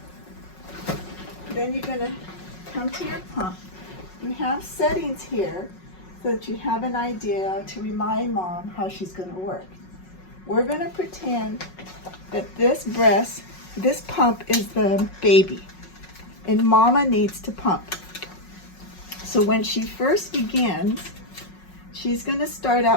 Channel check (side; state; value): right; late; 5.4 ms